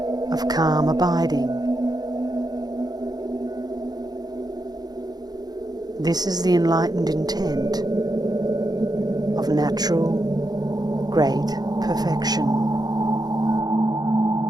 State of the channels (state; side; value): late; left; 0.19 ms